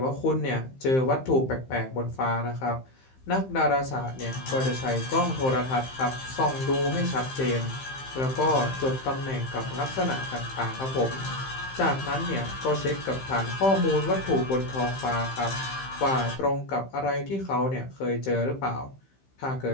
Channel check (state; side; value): late; right; 15 ms